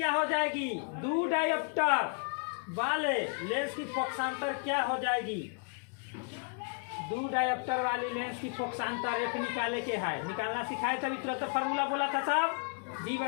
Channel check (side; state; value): right; quieter; 38.7 dB